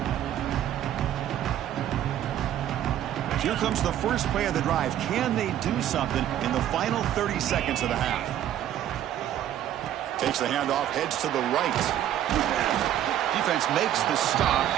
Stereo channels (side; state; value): left; quieter; 11.4 dB